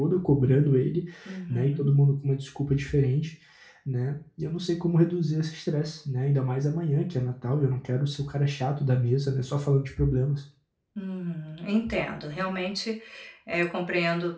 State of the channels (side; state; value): both; identical; correlation 1.00